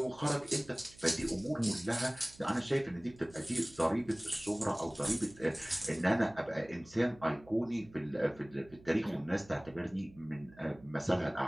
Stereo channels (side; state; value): right; noise; hum, 23 dB below the sound